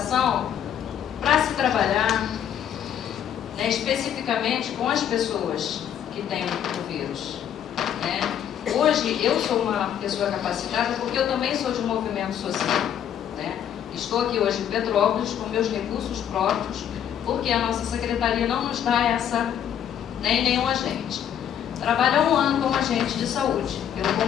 para se trabalhar, né, especificamente com as pessoas que têm o vírus, né? Hoje, eu sou uma pessoa capacitada porque eu também sou de um movimento social, né? Estou aqui hoje em Petrópolis com meus recursos próprios, porque a nossa secretaria não nos dá essa, nem nenhum agente. Trabalho há 1 ano como agente de saúde, pelo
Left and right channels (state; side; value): quieter; right; 9.5 dB